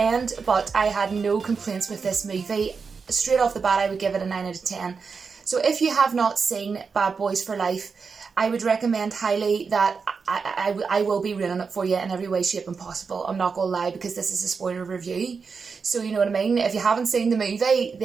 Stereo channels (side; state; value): left; quieter; 5.3 dB